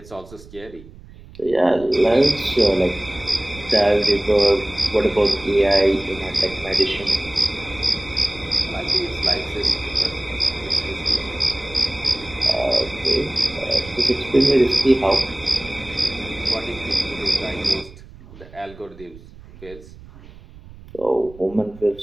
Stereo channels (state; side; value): noise; right; rumble, 19 dB below the sound